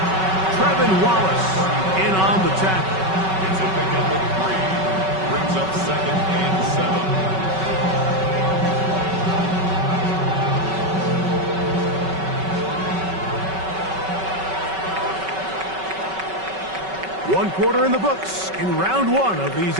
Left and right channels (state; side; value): late; left; 5.3 ms